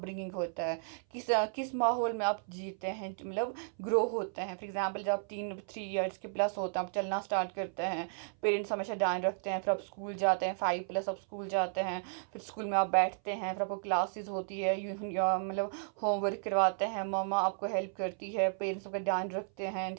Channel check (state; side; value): silent; left; 55 dB below the other